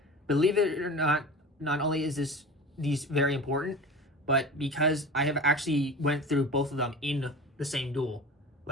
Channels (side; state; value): both; normal; correlation 0.35